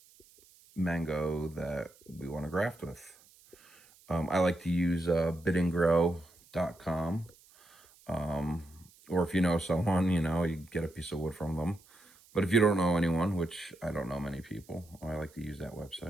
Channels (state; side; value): noise; right; hiss, 27 dB below the sound